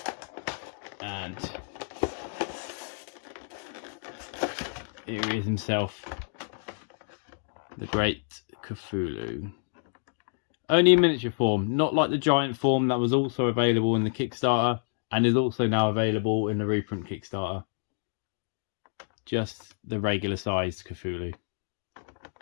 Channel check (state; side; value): silent; right; digital silence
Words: And here he is himself, the great Cthulhu. Only in miniature form, not like the giant form that was also available in the Kickstarter and is also now available in the reprint Kickstarter. Just the regular sized Cthulhu.